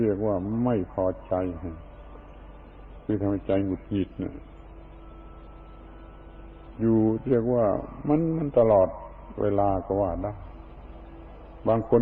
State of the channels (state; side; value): identical; both; correlation 1.00